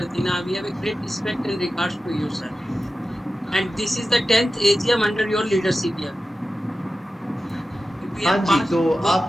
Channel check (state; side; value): normal; both; correlation 0.93